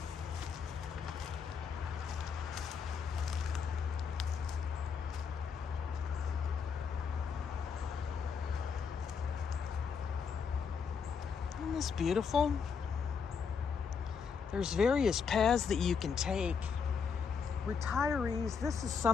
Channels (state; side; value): quieter; right; 6.1 dB